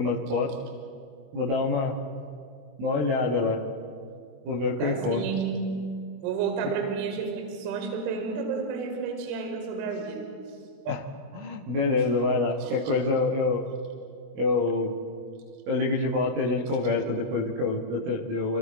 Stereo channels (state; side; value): late; left; 22 ms